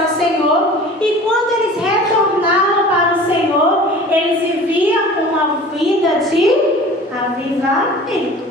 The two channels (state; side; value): normal; both; correlation 0.42